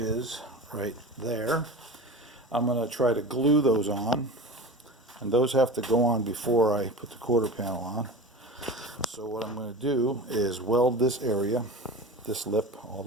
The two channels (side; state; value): both; normal; correlation 0.32